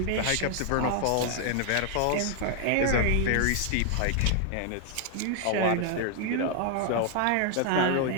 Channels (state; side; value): different; both; correlation 0.00